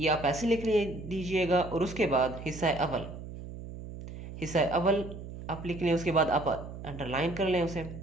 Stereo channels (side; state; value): right; noise; hum, 11 dB below the sound